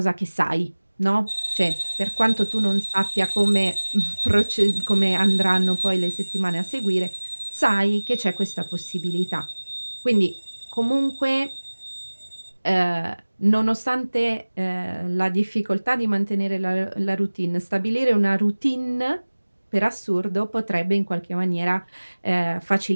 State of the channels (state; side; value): inverted; both; correlation -1.00